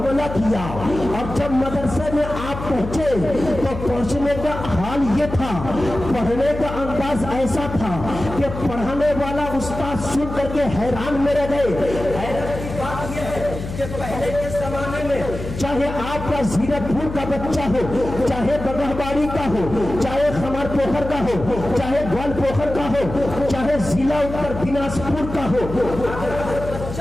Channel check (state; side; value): noise; left; hum, 8 dB below the sound